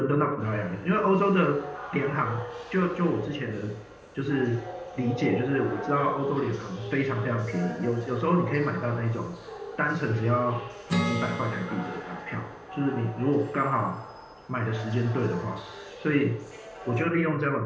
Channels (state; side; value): identical; both; correlation 1.00